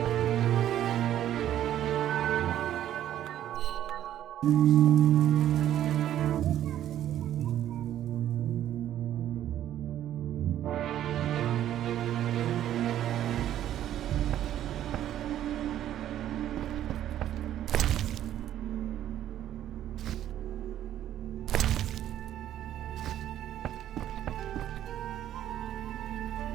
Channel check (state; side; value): quieter; left; 11.7 dB